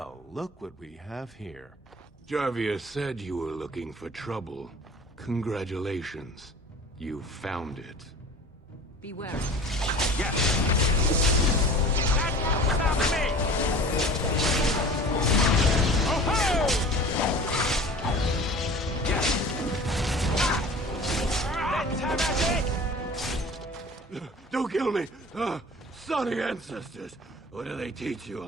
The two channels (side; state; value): both; normal; correlation 0.41